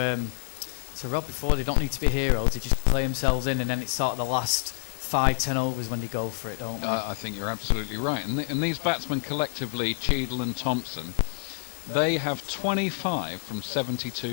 Rob before, they don't need to be heroes. They just play themselves in, and then it's sort of the last 5-10 overs when they go for it, don't they? I think you're absolutely right. And these batsmen collectively, Cheadle and Thompson, they have 25 from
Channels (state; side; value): silent; right; 60 dB below the other